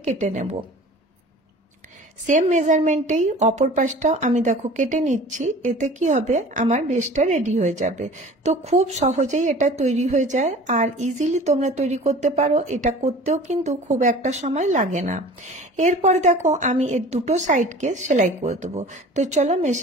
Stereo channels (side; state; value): both; normal; correlation 0.43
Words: কেটে নেব। সেম মেজারমেন্টেই অপর পাশটাও আমি দেখো কেটে নিচ্ছি। এতে কি হবে, আমার বেসটা রেডি হয়ে যাবে। তো খুব সহজেই এটা তৈরি হয়ে যায়, আর ইজিলি তোমরা তৈরি করতে পারো। এটা করতেও কিন্তু খুব একটা সময় লাগে না। এরপরে দেখো আমি এর দুটো সাইডকে সেলাই করে দেবো। তো চলো